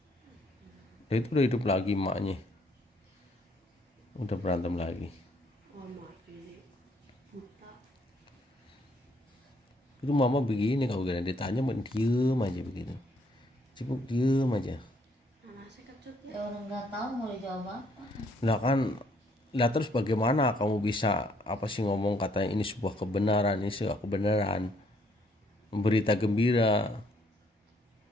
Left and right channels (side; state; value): both; normal; correlation 0.67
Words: Dia itu udah hidup lagi emaknya. Udah berantem lagi. Oh mati, buta. Itu mama begini, kalau gak ditanya diem aja begitu. Cipuk diem aja. Anaknya kecut Ya orang nggak tahu mau dijawab apa. Nah kan, lah terus bagaimana kamu bisa apa sih ngomong katanya ini sebuah kebenaran, ini sebuah kebenaran, berita gembira.